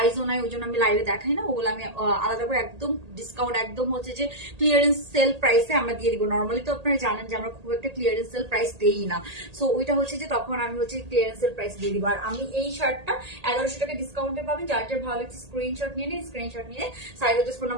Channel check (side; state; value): left; late; 1.8 ms